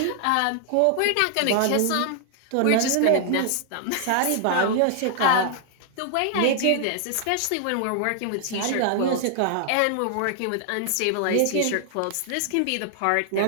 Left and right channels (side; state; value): both; different; correlation -0.01